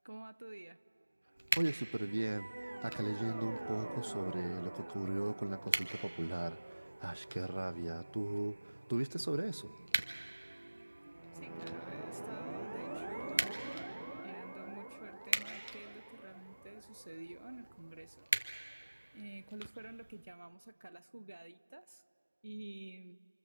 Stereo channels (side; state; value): both; inverted; correlation -1.00